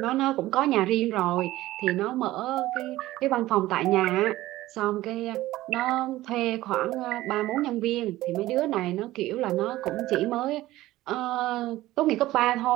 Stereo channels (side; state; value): left; quieter; 16.4 dB